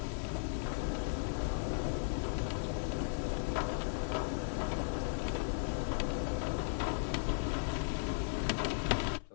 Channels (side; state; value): right; silent; 53 dB below the other